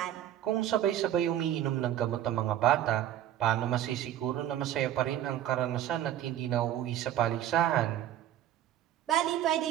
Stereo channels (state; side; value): quieter; left; 11.9 dB